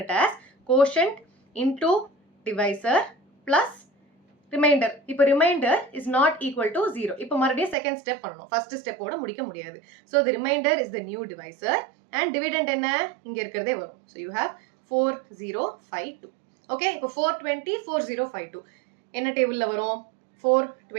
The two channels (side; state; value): left; drops out; at 7.8 s